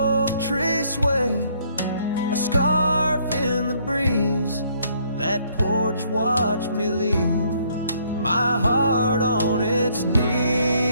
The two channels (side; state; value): both; inverted; correlation -0.66